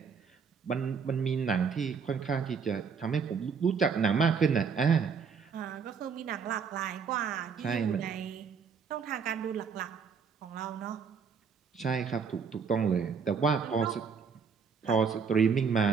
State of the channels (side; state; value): left; quieter; 6.0 dB